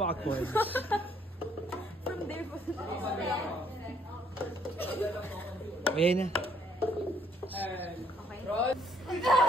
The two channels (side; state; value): both; normal; correlation 0.66